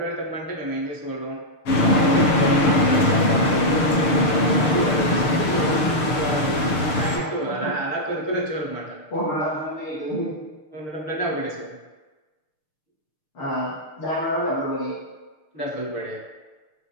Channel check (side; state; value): right; late; 6.6 ms